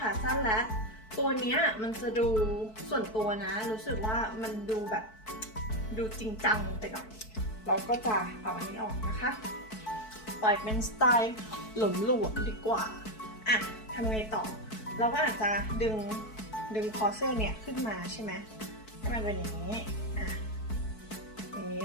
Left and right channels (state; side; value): late; right; 4.6 ms